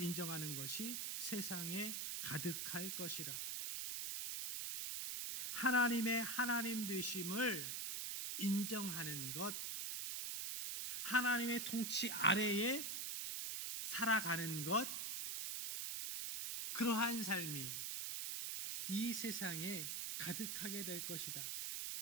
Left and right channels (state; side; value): noise; right; hiss, 2 dB below the sound